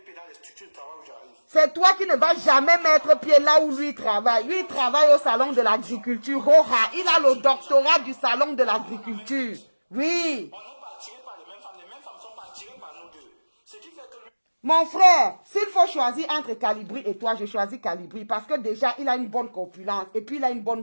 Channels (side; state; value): both; inverted; correlation -1.00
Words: pied dans les structures de travail où j'arrive. C'est toi qui ne vas jamais mettre pied là où lui travaille. Lui, il travaille au salon de l'agriculture. Il a le doctorat du salon de l'agriculture. Oui. On n'est pas attirés par les mêmes femmes ne sont pas attirées par nous deux. Ce qui fait que lui... Mon frère, s'il faut choisir entre Calibri et toi, je choisis Calibri parce que déjà, il a une bonne corpulence et puis il a une